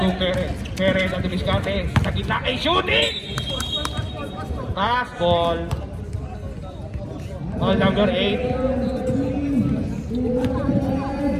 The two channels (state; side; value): identical; both; correlation 1.00